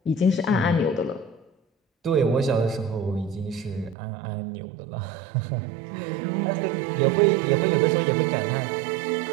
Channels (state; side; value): drops out; left; at 4.0 s